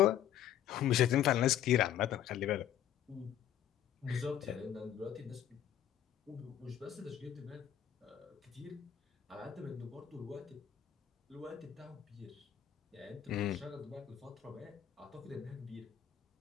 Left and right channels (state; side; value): quieter; right; 10.6 dB